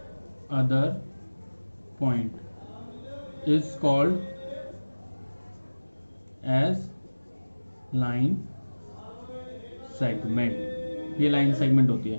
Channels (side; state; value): both; inverted; correlation -1.00